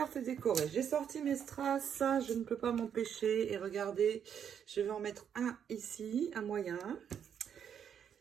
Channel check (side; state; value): left; quieter; 8.3 dB